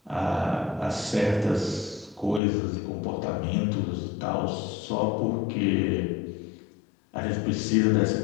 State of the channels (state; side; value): drops out; right; at 2.4 s